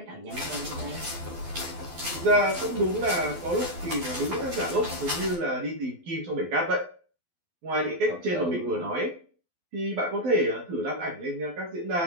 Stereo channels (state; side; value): late; left; 12 ms